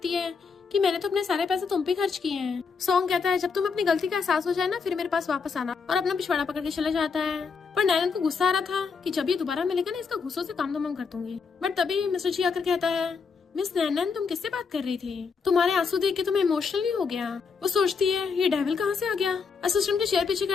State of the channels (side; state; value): right; quieter; 5.3 dB